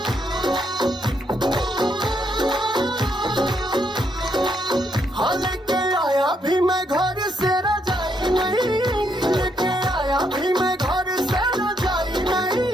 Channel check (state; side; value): normal; both; correlation 0.75